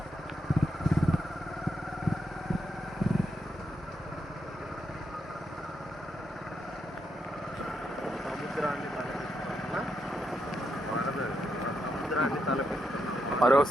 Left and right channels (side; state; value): both; normal; correlation 0.82